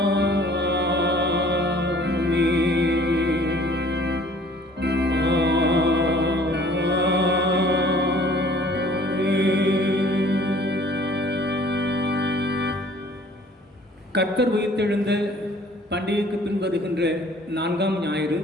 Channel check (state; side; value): normal; both; correlation 0.54